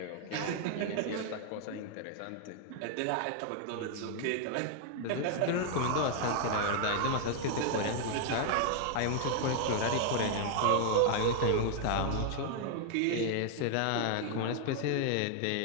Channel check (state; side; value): different; both; correlation 0.00